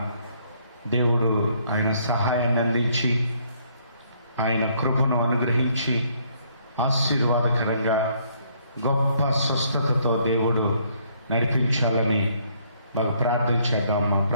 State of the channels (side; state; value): both; inverted; correlation -0.67